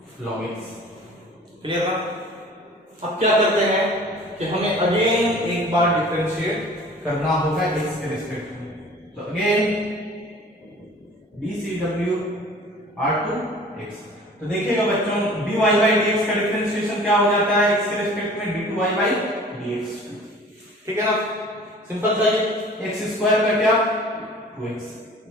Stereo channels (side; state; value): both; normal; correlation 0.47